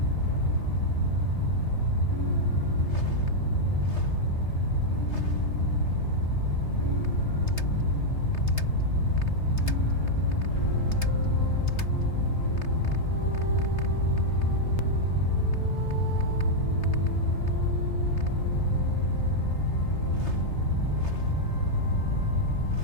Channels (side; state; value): right; late; 3.3 ms